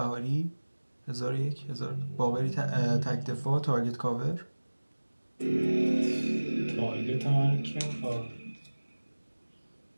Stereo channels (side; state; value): both; inverted; correlation -1.00